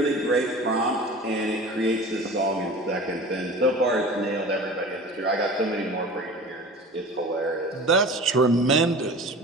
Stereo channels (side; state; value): both; normal; correlation 0.38